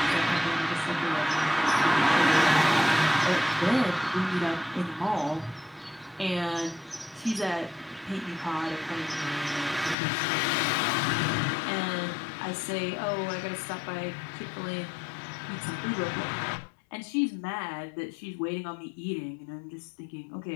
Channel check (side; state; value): right; drops out; at 10.0 s